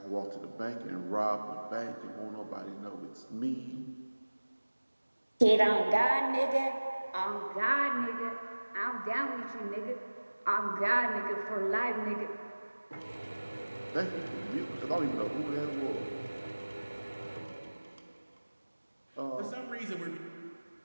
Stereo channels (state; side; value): inverted; both; correlation -1.00